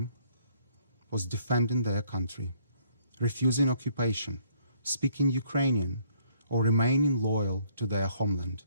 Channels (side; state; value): both; inverted; correlation -0.64